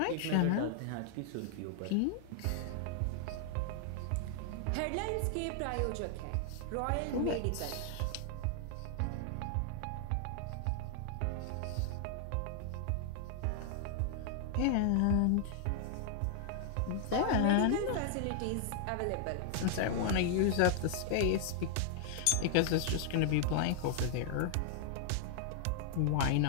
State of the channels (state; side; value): different; both; correlation 0.00